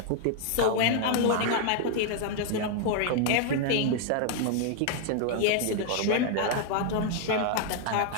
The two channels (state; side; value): different; both; correlation 0.00